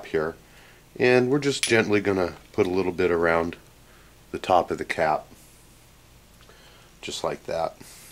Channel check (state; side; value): identical; both; correlation 1.00